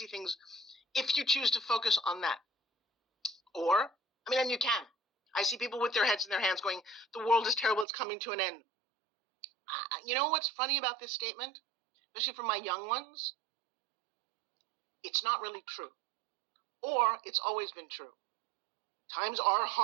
things if you choose to focus on that. And you can. I see people with their heads in their hands going, the world is terrible. It's coming to an end. You know what's funny about this statement? Especially for my young ones? It's not really true. Or it's always been true. Times are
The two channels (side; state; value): left; drops out; at 7.9 s